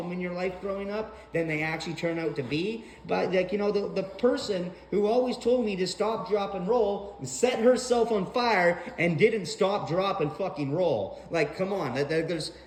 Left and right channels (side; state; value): both; identical; correlation 1.00